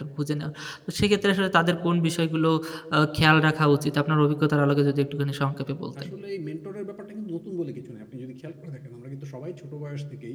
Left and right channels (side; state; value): both; identical; correlation 1.00